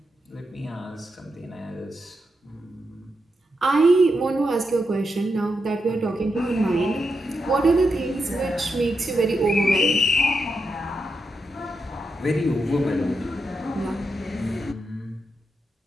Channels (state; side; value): normal; both; correlation 0.85